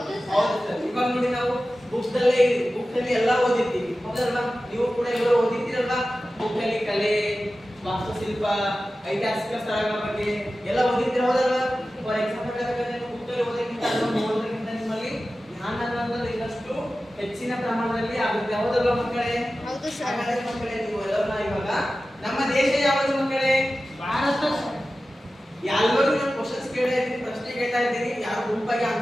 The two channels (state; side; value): normal; both; correlation 0.95